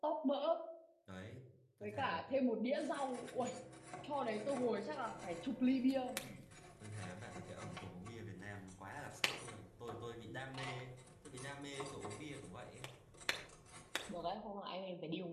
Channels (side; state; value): both; identical; correlation 1.00